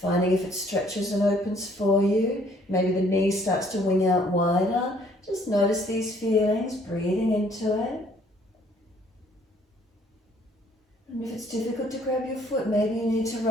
if it stretches and opens for you. Maybe the knee starts to wing out wider. Just notice these feelings, breathing into it. And if it's difficult to grab your foot, maybe you need to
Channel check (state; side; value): normal; both; correlation 0.62